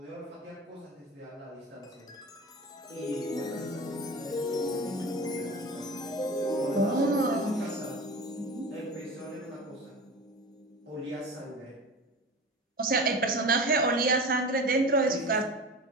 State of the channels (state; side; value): normal; both; correlation 0.33